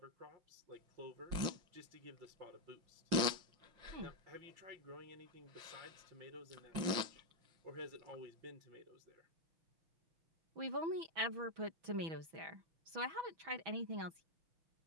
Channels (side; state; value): left; late; 5.7 ms